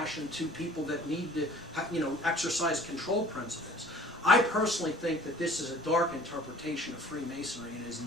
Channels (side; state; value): both; normal; correlation 0.50